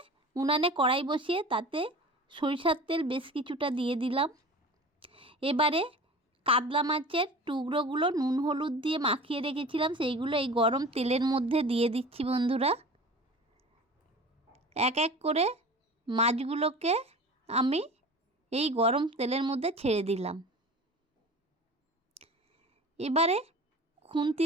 উনানে কড়াই বসিয়ে তাতে সরিষার তেল বেশ কিছুটা দিয়ে দিলাম। এবারে কাতলা মাছের টুকরোগুলো নুন হলুদ দিয়ে মাখিয়ে রেখেছিলাম, সেইগুলো এই গরম তেলের মধ্যে দিয়ে দিচ্ছি বন্ধুরা। এক এক করে মাছগুলোকে আমি এই গরম তেলের মধ্যে ছেড়ে দিলাম। এবারে খুন্তি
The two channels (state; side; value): normal; both; correlation 0.38